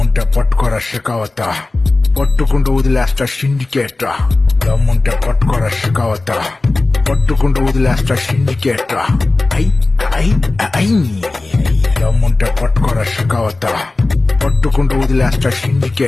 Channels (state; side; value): quieter; right; 3.2 dB